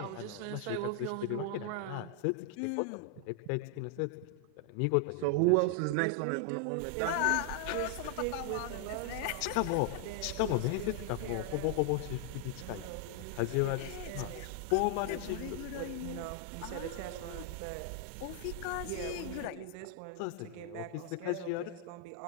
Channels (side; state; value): both; different; correlation 0.00